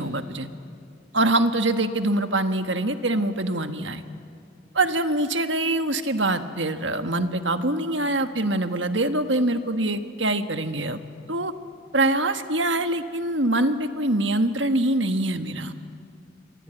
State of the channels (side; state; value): both; normal; correlation 0.23